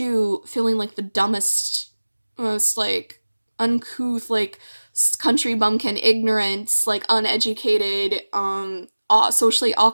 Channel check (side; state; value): both; inverted; correlation -1.00